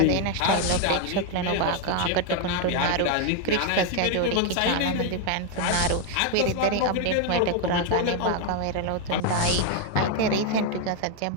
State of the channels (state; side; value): different; both; correlation 0.01